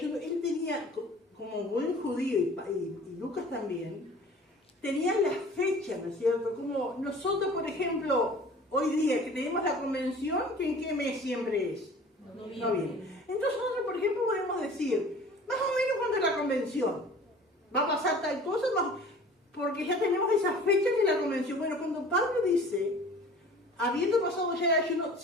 él tenía, como buen judío y Lucas también, tenían las fechas, ¿no es cierto? Como nosotros, por ejemplo, hoy día que tenemos la convención, que ¿en qué mes siempre es? Noviembre. Entonces nosotros, por ejemplo, podemos decir, más o menos cuando es la convención, va a pasar tal cosa, porque ya tenemos esas fechas de la convención. Bueno, cuando Pablo dice, habiendo pasado ya el ayuno,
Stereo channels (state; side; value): normal; both; correlation 0.45